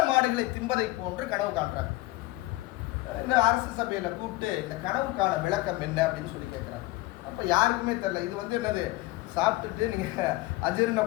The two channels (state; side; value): quieter; right; 19.7 dB